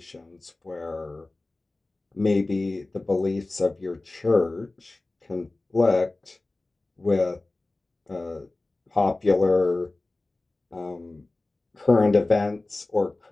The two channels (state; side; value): quieter; right; 3.0 dB